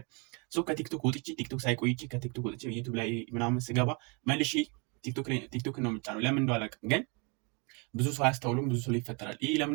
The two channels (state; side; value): quieter; left; 31.0 dB